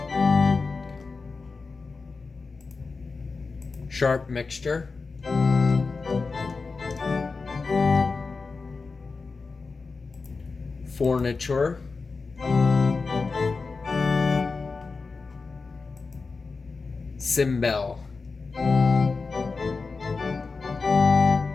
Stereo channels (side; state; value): right; quieter; 4.3 dB